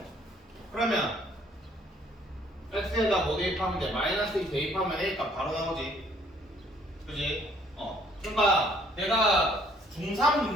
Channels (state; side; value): normal; both; correlation 0.62